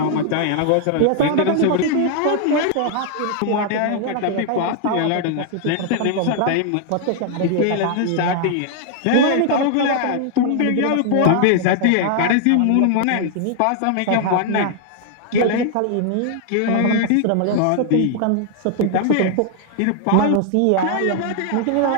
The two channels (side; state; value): both; different; correlation 0.00